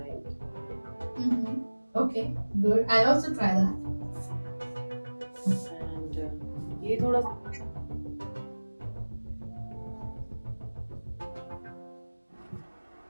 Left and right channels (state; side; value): inverted; both; correlation -1.00